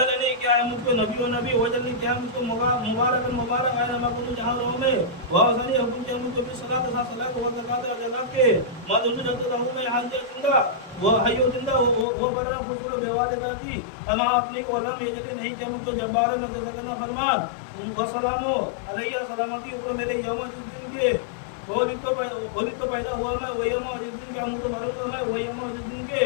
کیا ہے مجھ کو نبی و نبی وجلنی کیا ہے مجھ کو مبارک مبارک آئے نمہ کنو جہاں رہوں میں وحسنی حکم کیا مجھ کو بھی صلاة تھا صلاة و زکاة و جناب کے مدرسو جلتے رہوں میں حاجی زندہ وہ حیو زندہ وہ برنا خسور بیوالدہ تھی تمام اپنی کو علم ایجتے نہیں جب مجھ کو جبارہ نزدنا فرمان وسلامو علیہ سلامتی اوپر میرے یوم جس دن کے وہی تو پیدا ہوا میں وہی یوم جس دن کے ہم تو مروں گا میں وہی یوم جس دن کے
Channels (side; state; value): right; drops out; at 12.1 s